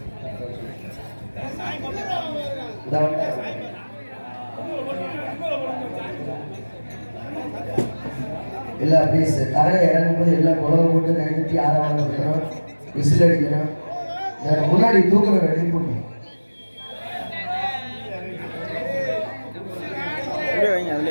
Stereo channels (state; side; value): inverted; both; correlation -1.00